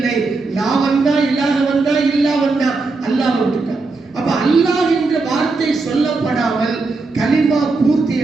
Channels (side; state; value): left; quieter; 3.7 dB